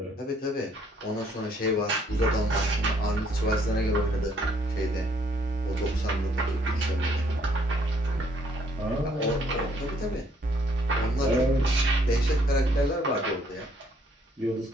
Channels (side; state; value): both; normal; correlation 0.66